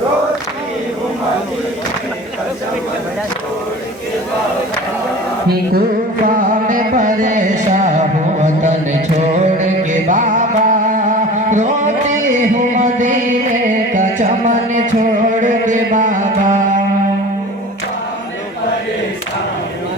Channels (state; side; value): normal; both; correlation 0.39